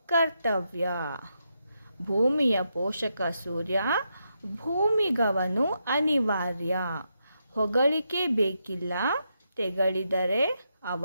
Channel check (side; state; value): both; inverted; correlation -0.83